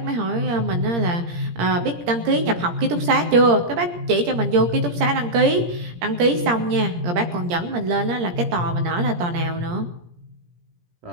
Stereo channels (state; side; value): late; left; 17 ms